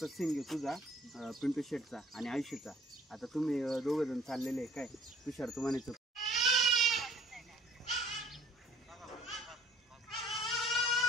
सीन घेऊ तुझा, पिंटू शेटचा आणि आयुष्यचा. आता तुम्ही दोघं जण चाललेले काय, तुषार तू म्हणायचं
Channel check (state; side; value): normal; both; correlation 0.56